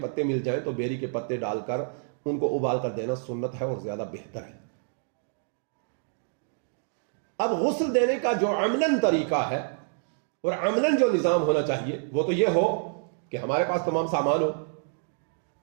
مل جائیں تو بیری کے پتے ڈال کر ان کو ابال کر دینا سنت ہے اور زیادہ بہتر ہے. اب غسل دینے کا جو عملاً طریقہ ہے اور عملاً جو نظام ہونا چاہیے وہ تو یہ ہو کہ ہمارے پاس تمام سامان ہو،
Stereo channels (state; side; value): silent; left; digital silence